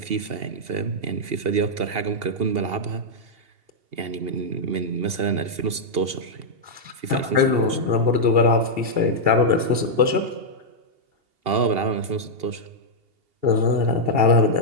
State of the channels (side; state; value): left; late; 2.8 ms